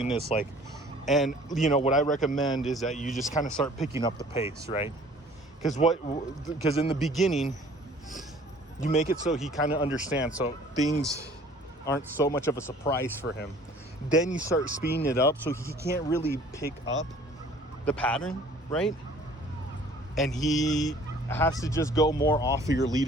this like, and what I recommend is that you just kind of start picking up the pace, right? Because in the beginning, you make it so he kind of understands, so things aren't so much of a surprise for him. Then you start speeding it up so he can't really pick up the pattern, right? And he has to just go more off of your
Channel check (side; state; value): both; normal; correlation 0.52